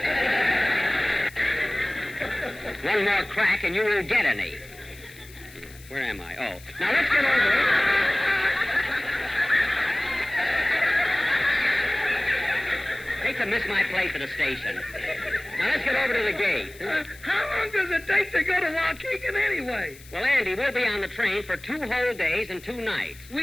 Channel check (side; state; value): left; noise; hiss, 21 dB below the sound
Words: One more crack and you won't get any. Where am I? Oh, now let's get over it. Hate to miss my place at the station. Now let's get over to the gate. How long does it take to go to Waukegan anyway? Well, Andy, we'll be on the train for 2 whole days and 2 nights.